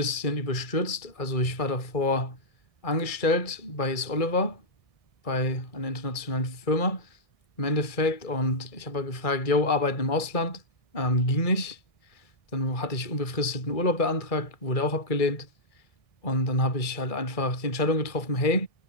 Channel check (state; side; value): late; right; 1.6 ms